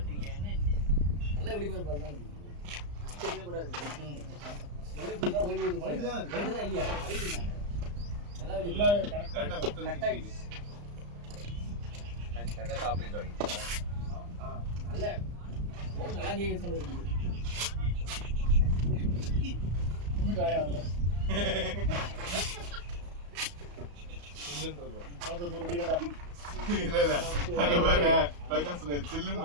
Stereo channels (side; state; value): left; late; 34 ms